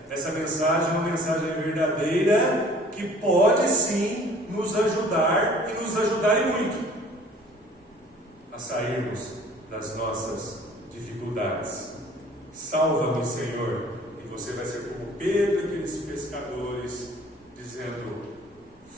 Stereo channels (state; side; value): normal; both; correlation 0.52